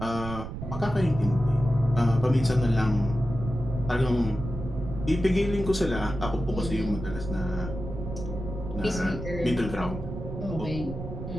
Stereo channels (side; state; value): right; noise; rumble, 8 dB below the sound